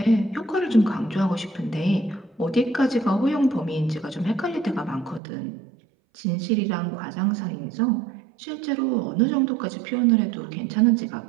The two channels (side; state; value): left; drops out; at 5.2 s